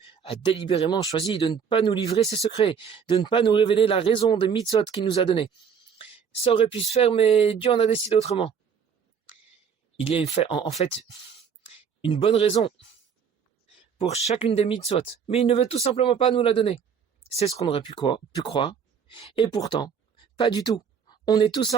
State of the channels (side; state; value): left; quieter; 7.0 dB